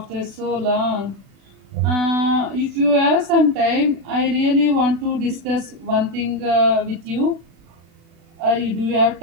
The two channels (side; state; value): left; late; 36 ms